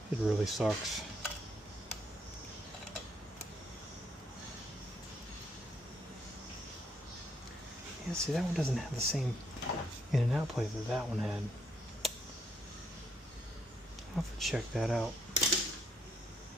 It really sucks. Yeah, see, that one doesn't have the same in and out plate that that one had. I'll have to check that out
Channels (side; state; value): both; normal; correlation 0.72